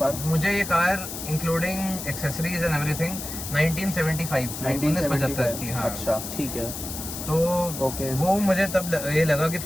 मुझे ये car including accessories and everything 1975 की। हाँ, अच्छा ठीक है। तो वो मुझे तब ये लगा कि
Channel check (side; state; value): left; noise; hiss, 8 dB below the sound